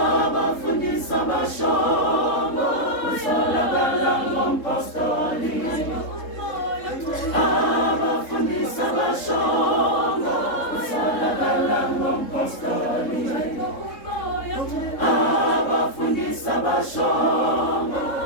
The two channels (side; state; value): right; late; 3.7 ms